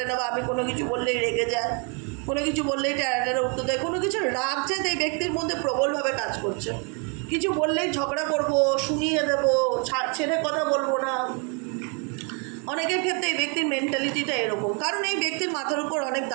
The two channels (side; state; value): left; quieter; 36.3 dB